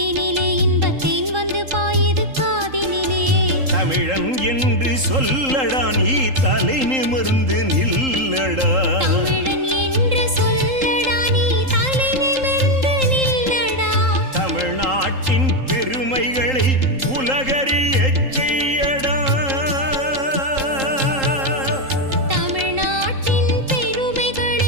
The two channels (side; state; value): left; late; 3.8 ms